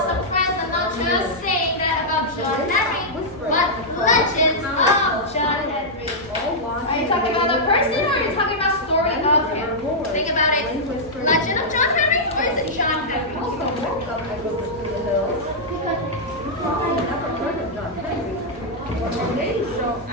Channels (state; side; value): normal; both; correlation -0.08